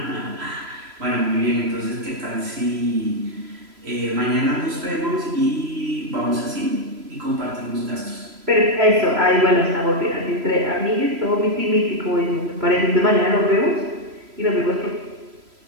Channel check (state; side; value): late; left; 3.0 ms